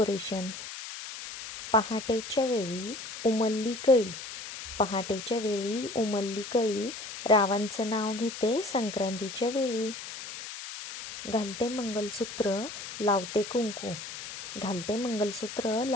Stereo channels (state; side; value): noise; left; hiss, 10 dB below the sound